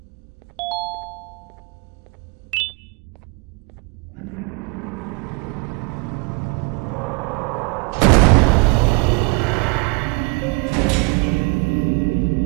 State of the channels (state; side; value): quieter; left; 30.8 dB